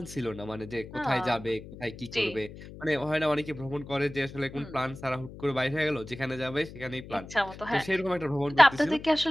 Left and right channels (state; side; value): noise; left; hum, 15 dB below the sound